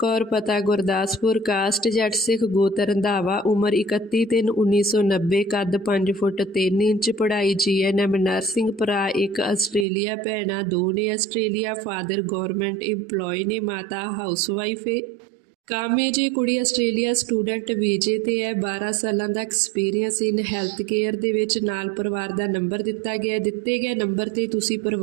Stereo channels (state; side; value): drops out; left; at 9.9 s